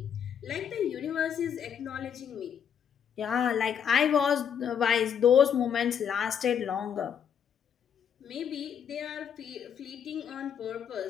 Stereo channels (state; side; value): quieter; right; 8.1 dB